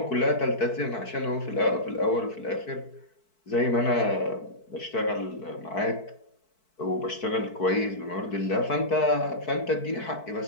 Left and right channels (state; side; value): late; right; 4.6 ms